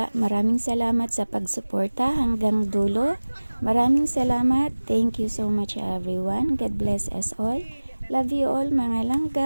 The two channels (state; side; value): inverted; both; correlation -1.00